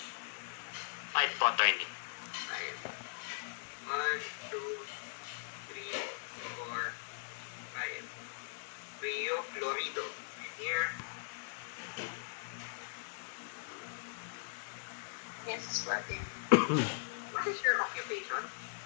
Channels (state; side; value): silent; right; digital silence